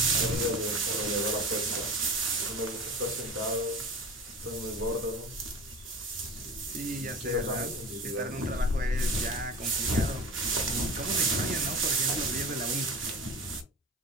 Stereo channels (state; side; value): normal; both; correlation 0.33